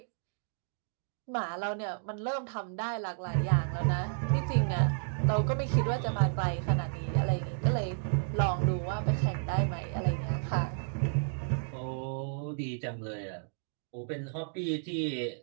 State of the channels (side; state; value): left; silent; digital silence